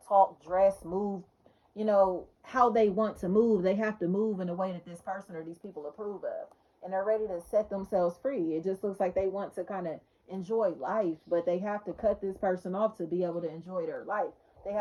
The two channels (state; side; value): identical; both; correlation 1.00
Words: talk, dress, move, you know, how they want to move. They have to move in a way that this person or these people approve of. And they're ready to set themselves free. It just looks like they want to kind of enjoy life, but they have to cut this person off to be able to enjoy their life. They